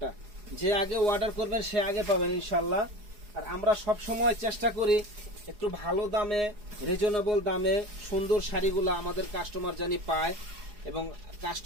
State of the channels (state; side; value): late; left; 4.8 ms